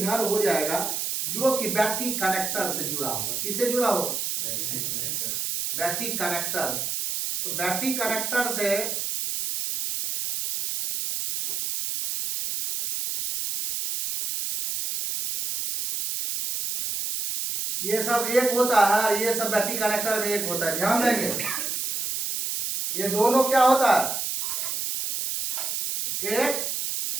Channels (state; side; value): noise; right; hiss, 2 dB below the sound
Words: हो जाएगा जो कि बैटरी कनेक्टर से जुड़ा हुआ। किससे जुड़ा हुआ, बैटरी कनेक्टर। तो बैटरी कनेक्टर से ये सब एक होता है और ये सब बैटरी कनेक्टर में एक होता है, ध्यान देंगे। ये दोनों क्या होता है, एक